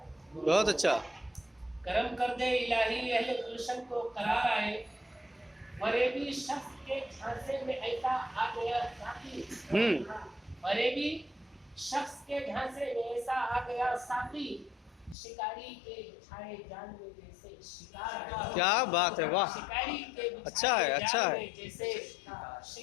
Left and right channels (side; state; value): right; drops out; at 15.2 s